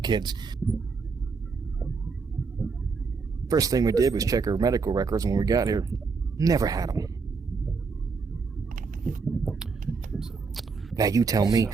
kids. First thing we did was check her medical records when we got here. Never had them. Now you tell me,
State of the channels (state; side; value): quieter; left; 4.8 dB